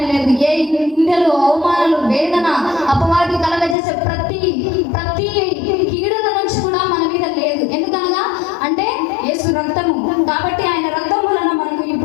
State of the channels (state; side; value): drops out; right; at 3.8 s